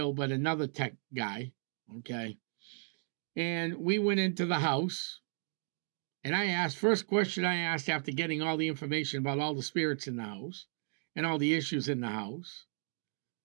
but another tech guy. Okay. And we went into the house. And first question I asked after getting all the information about all the spirits in the house and all the issues in the house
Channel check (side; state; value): left; silent; 55 dB below the other